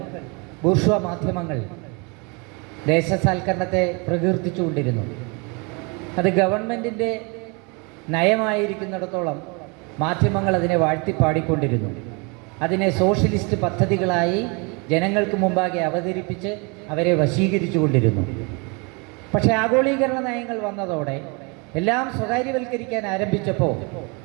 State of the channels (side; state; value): left; quieter; 31.0 dB